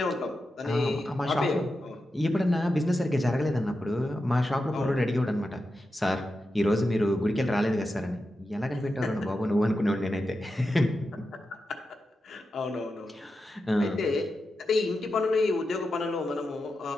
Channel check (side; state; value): both; normal; correlation 0.90